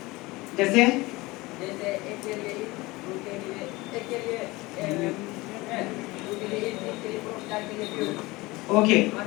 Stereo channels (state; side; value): quieter; right; 21.7 dB